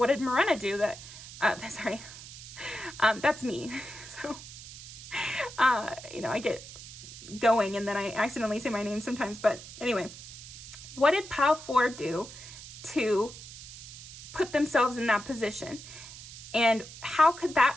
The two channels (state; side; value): noise; right; hiss, 14 dB below the sound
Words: did Morena do that, sorry, that's me. So, you know, I get going and then I accidentally say my name sometimes, but anyway, what did Pile 4 do to put themselves in that position? And how could